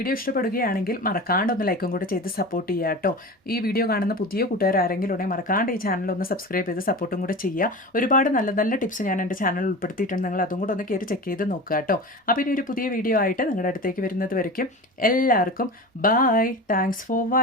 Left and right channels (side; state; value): both; normal; correlation 0.31